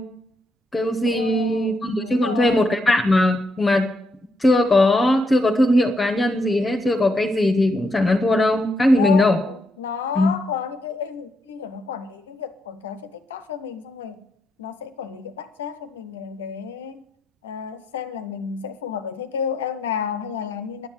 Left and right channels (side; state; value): both; normal; correlation 0.79